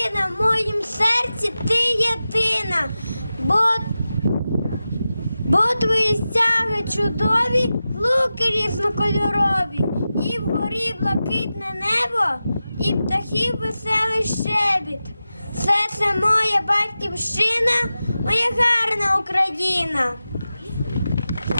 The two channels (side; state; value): both; inverted; correlation -0.93